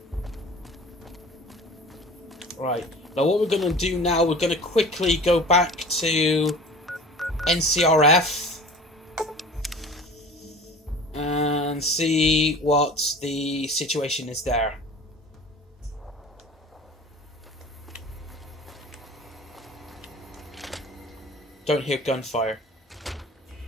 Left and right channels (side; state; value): both; normal; correlation 0.41